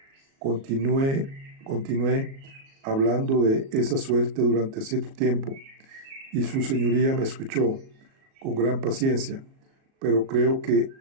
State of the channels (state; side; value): late; left; 37 ms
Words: Continué hablando de esa suerte durante cierto tiempo, y su señoría me escuchó con gran paciencia, pero creo que